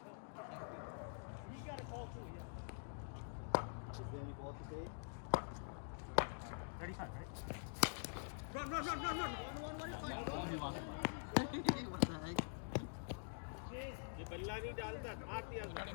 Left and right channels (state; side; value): silent; right; digital silence